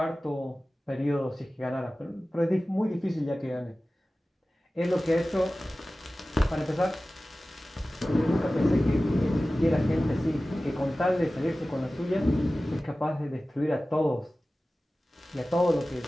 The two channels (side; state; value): both; normal; correlation 0.96